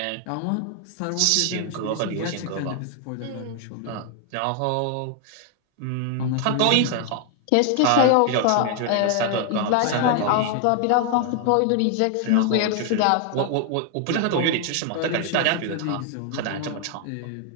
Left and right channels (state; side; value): different; both; correlation 0.00